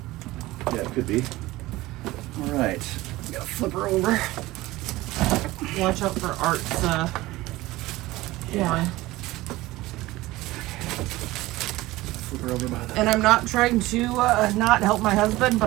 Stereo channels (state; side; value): quieter; left; 18.5 dB